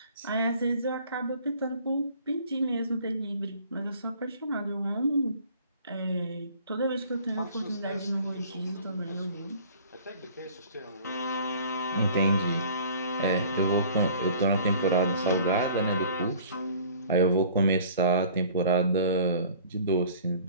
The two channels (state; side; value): inverted; both; correlation -0.49